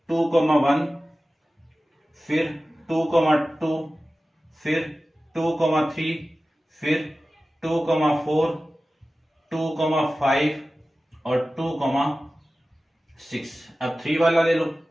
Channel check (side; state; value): both; normal; correlation 0.95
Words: 2,1, फिर 2,2, फिर 2,3, फिर 2,4, 2,5 और 2,6। अब 3 वाला ले लो।